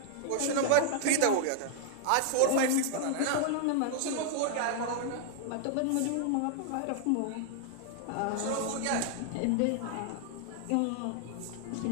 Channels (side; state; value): both; different; correlation 0.00